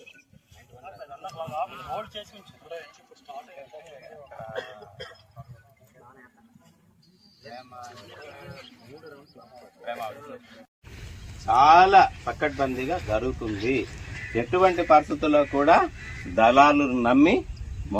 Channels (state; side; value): identical; both; correlation 1.00